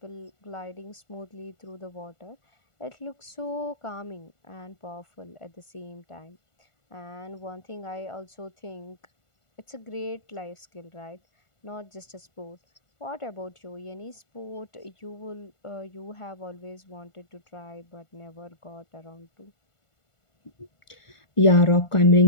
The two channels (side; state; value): right; late; 1.4 ms